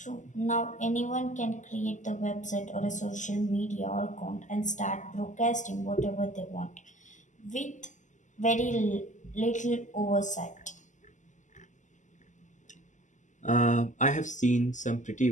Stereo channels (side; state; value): right; late; 0.36 ms